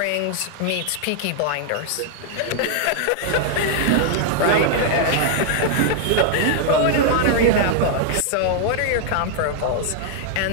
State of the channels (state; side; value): different; both; correlation 0.00